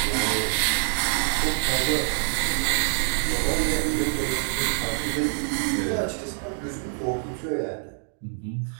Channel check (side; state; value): left; silent; digital silence